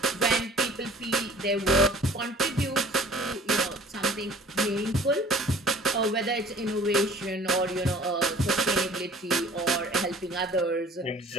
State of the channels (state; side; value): normal; both; correlation 0.49